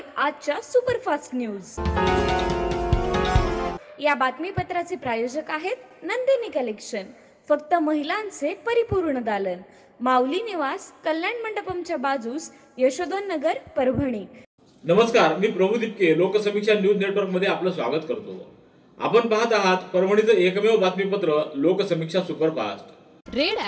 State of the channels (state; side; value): identical; both; correlation 1.00